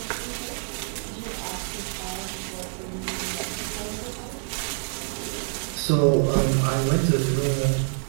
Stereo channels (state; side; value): silent; left; 56 dB below the other